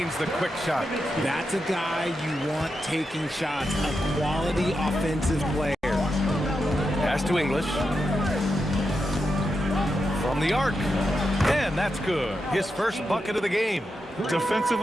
the quick shot. That's a guy you want taking shots, a quality offensive player. Pass to English. From the arc. And that's good. His first bucket of the game.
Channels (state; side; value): normal; both; correlation 0.87